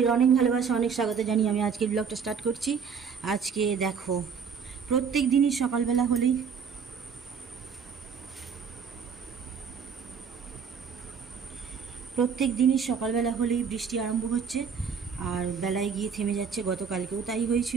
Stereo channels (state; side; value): quieter; left; 6.4 dB